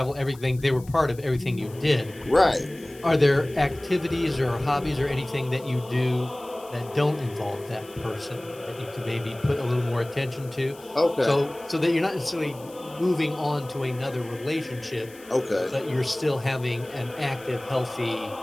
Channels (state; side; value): noise; left; hiss, 22 dB below the sound